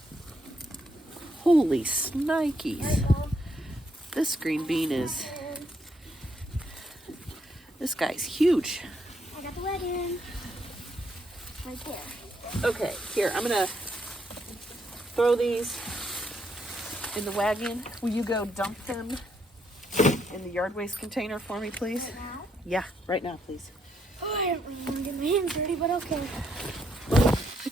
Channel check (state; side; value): normal; both; correlation 0.75